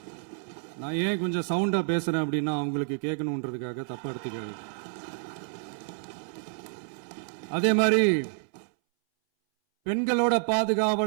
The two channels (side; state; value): left; silent; 59 dB below the other